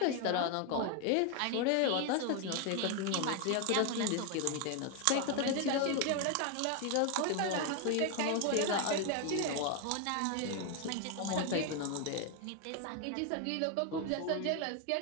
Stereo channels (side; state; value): both; different; correlation 0.01